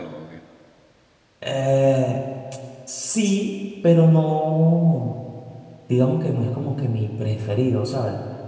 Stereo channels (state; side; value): identical; both; correlation 1.00